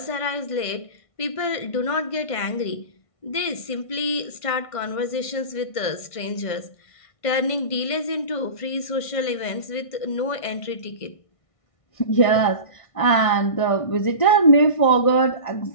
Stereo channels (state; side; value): late; right; 1.6 ms